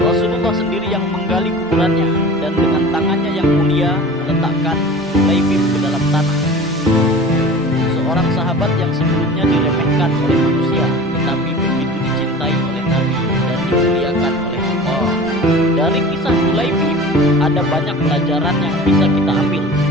sendiri yang menggali kuburannya dan dengan tangannya yang mulia meletakkan Julaibib ke dalam tanah. Seorang sahabat yang sebelumnya diremehkan oleh manusia, tetapi begitu dicintai oleh Nabi dan dimuliakan oleh Allah. Dari kisah Julaibib ada banyak pelajaran yang bisa kita ambil.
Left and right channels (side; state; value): both; normal; correlation 0.39